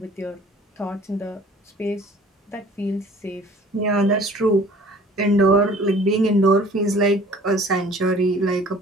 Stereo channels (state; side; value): normal; both; correlation 0.51